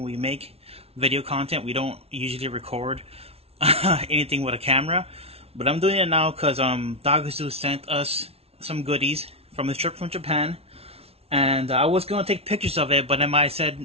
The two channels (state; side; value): late; left; 0.30 ms